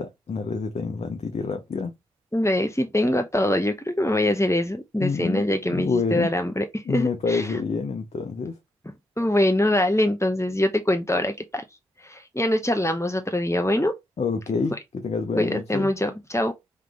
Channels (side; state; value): both; normal; correlation 0.80